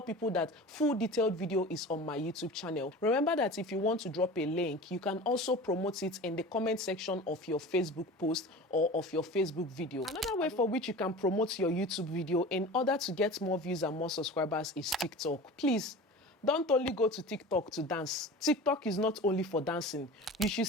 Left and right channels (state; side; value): normal; both; correlation 0.36